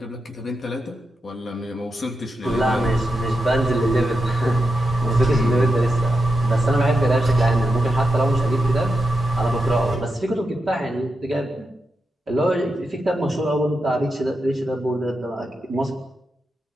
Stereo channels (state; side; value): normal; both; correlation 0.87